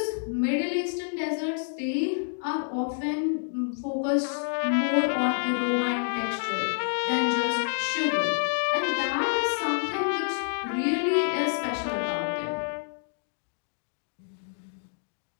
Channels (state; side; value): silent; right; digital silence